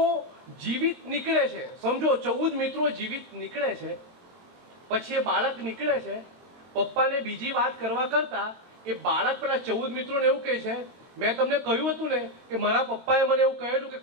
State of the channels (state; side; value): late; left; 22 ms